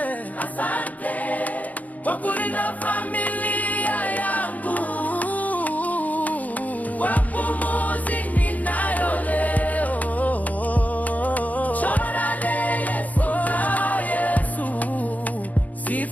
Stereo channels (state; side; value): late; right; 0.076 ms